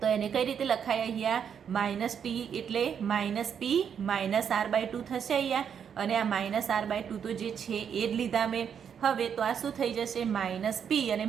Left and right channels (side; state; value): left; quieter; 7.8 dB